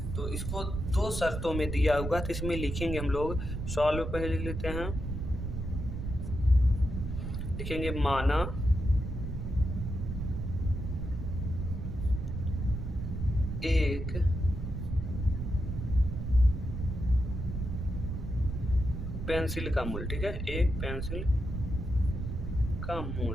तो इसको 2 शर्तों में दिया होगा। तो इसमें लिखेंगे हम लोग, सॉल्व पहले लिख लेते हैं, लिखेंगे माना एक पेंसिल का मूल्य। ठीक है, एक पेंसिल का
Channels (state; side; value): noise; right; rumble, 4 dB below the sound